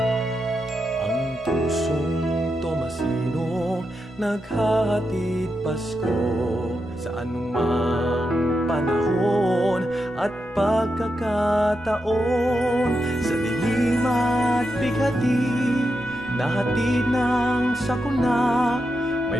Naghahatid Pasko sa anumang panahon at pagkakataon. Sa dilim at bighati, nahatid ng sakuna. May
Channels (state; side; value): normal; both; correlation 0.86